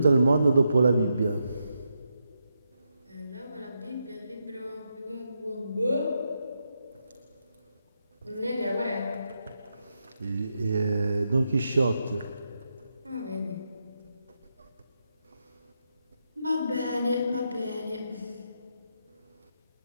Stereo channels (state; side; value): inverted; both; correlation -0.84